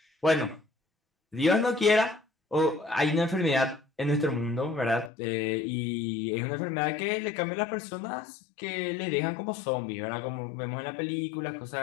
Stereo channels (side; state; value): right; drops out; at 5.1 s